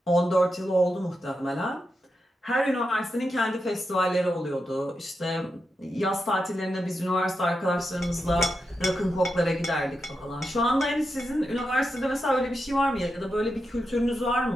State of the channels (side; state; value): both; normal; correlation 0.87